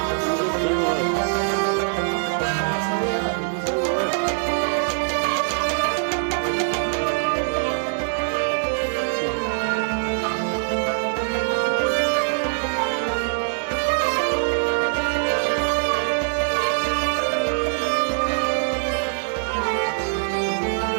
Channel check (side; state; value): left; silent; digital silence